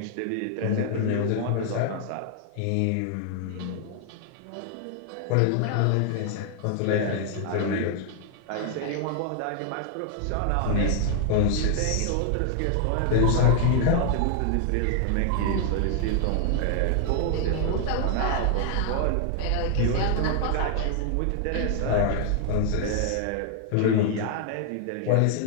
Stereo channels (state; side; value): different; both; correlation 0.00